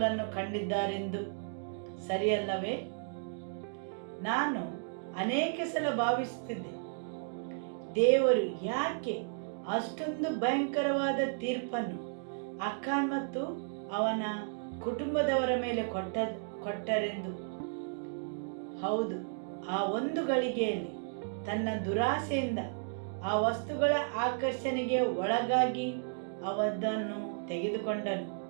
ಕಂಡಿದ್ದಾರೆಂದು. ಸರಿಯಲ್ಲವೇ? ನಾನು ಅನೇಕ ಸಲ ಭಾವಿಸುತ್ತಿದ್ದೆ, ದೇವರು ಯಾಕೆ ಅಷ್ಟೊಂದು ಭಯಂಕರವಾದ ತೀರ್ಪನ್ನು ಅಖಾನ್ ಮತ್ತು ಅವನ ಕುಟುಂಬದವರ ಮೇಲೆ ಕೊಟ್ಟರೆಂದು. ಹೌದು, ಆ ಒಂದು ಗಳಿಗೆಯಲ್ಲಿ ತನ್ನ ದುರಾಸೆಯಿಂದ ಆ ವಸ್ತುಗಳ ಆಕರ್ಷಣೆಗೆ ಒಳಗಾಗಿ ಅವದನ್ನು ತೆಗೆದುಕೊಂಡನು.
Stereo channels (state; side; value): silent; left; digital silence